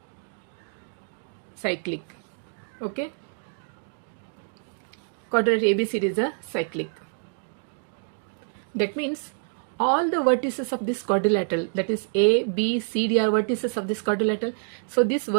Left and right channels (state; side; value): silent; left; 59 dB below the other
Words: Cyclic. Okay? Quadrilateral ABCD is a cyclic. That means all the vertices of this quadrilateral, that is A, B, C, D are vertices of this quadrilateral. So these